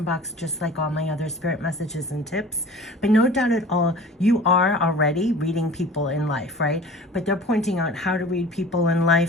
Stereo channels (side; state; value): both; normal; correlation 0.42